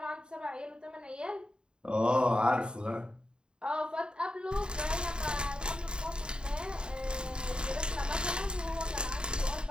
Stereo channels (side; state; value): left; late; 0.049 ms